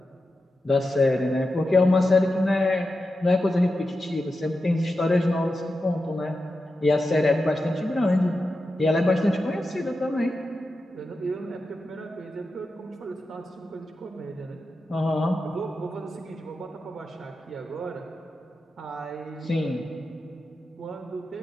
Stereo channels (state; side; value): normal; both; correlation 0.90